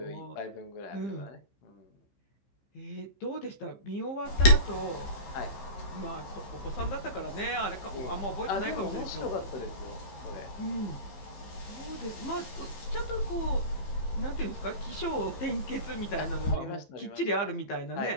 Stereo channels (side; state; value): right; late; 15 ms